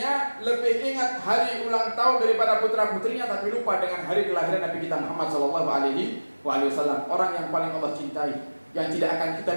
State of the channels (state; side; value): inverted; both; correlation -1.00